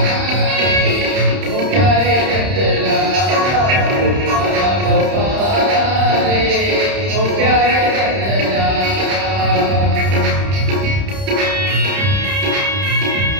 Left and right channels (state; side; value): late; left; 30 ms